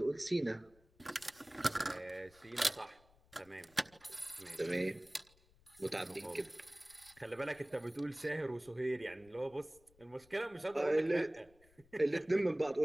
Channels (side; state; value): left; noise; rumble, 29 dB below the sound